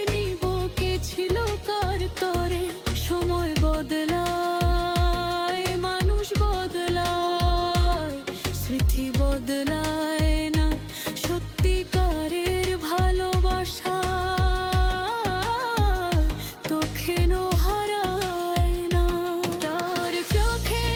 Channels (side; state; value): both; identical; correlation 1.00